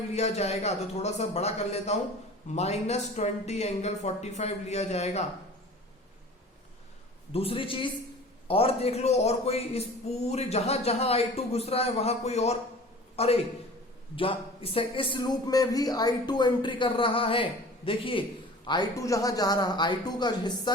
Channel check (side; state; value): both; normal; correlation 0.42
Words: लिया जाएगा। तो थोड़ा सा बड़ा कर लेता हूं, -20 एंगल 45 लिया जाएगा। दूसरी चीज और देख लो, और कोई इस पूरे जहां जहां I2 घुस रहा है वहां कोई और, अरे इस लूप में भी I2 एंट्री कर रहा है। देखिए I2 जहां जा रहा, I2 का हिस्सा